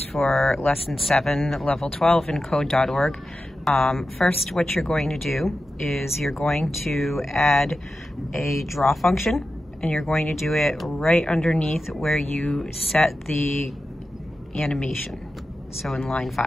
for Lesson 7, Level 12 in Code.org. First, what you're going to do is you're going to add a draw function, and you're going to do it right underneath where you set the animation, so in line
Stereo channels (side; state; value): both; normal; correlation 0.92